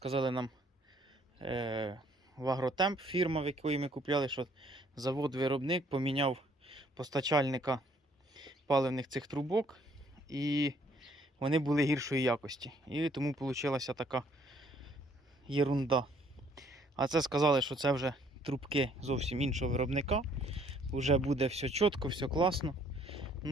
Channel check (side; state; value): both; normal; correlation 0.63